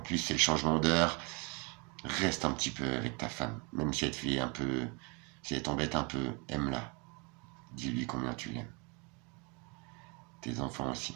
c'est le changement d'heure. Reste un petit peu avec ta femme, même si elle te fait un peu, si elle t'embête un peu, aime-la. Dis-lui combien tu l'aimes. Tes enfants aussi.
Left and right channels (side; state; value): left; quieter; 29.9 dB